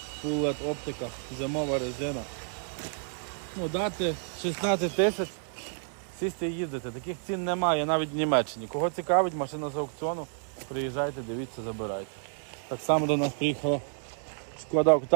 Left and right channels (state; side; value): silent; left; digital silence